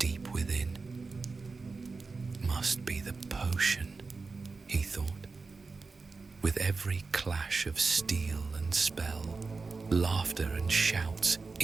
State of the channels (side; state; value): left; quieter; 4.2 dB